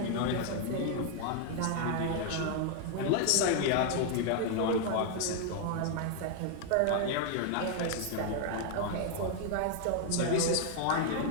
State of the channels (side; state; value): both; different; correlation 0.00